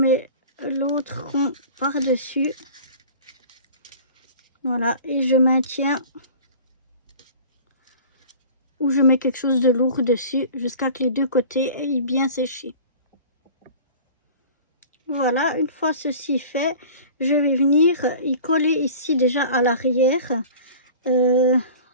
l'autre rond par-dessus. Voilà, et je maintiens ou je mets quelque chose de lourd dessus jusqu'à que les deux côtés aient bien séché. Voilà, une fois ceci fait, je vais venir y coller ici déjà à l'arrière.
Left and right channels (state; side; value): inverted; both; correlation -0.42